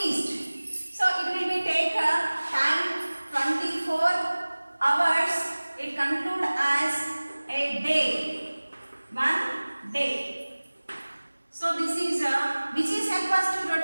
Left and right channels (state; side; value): inverted; both; correlation -1.00